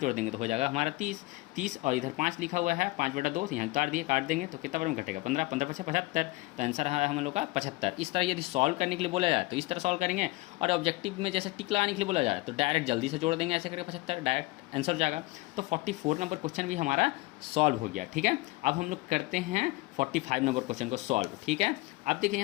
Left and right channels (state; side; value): quieter; right; 22.0 dB